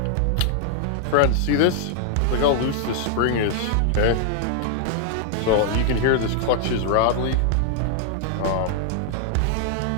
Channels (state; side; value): different; both; correlation 0.00